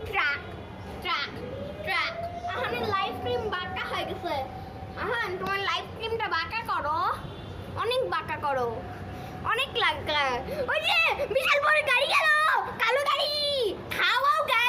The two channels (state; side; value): identical; both; correlation 1.00